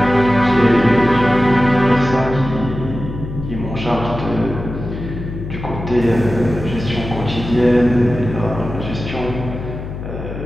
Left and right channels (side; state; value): left; noise; hum, 9 dB below the sound